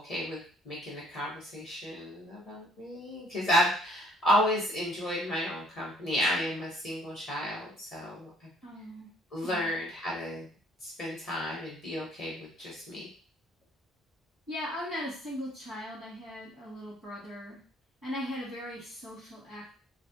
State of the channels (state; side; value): normal; both; correlation 0.60